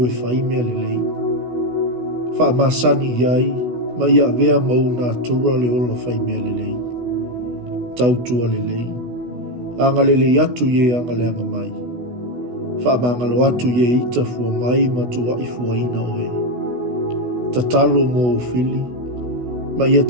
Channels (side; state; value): left; late; 16 ms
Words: e whai mea lelei. Whaamasani iai, ma ia vea mau nā tura le ola whai mea lelei. Tautua lelei. Anga lelei atu ye anga leanga mai. Whaamangalo atu ye ita fua mai ma tua i fua ina oe. Tatalo mo ufili, ma ia